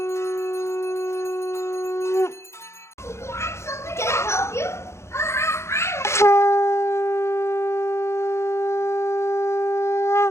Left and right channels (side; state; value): right; late; 0.13 ms